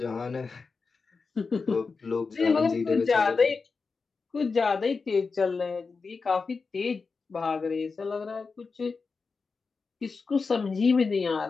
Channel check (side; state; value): right; quieter; 4.6 dB